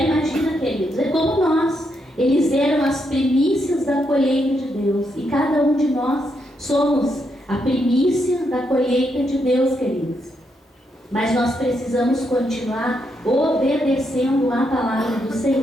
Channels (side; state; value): both; normal; correlation 0.80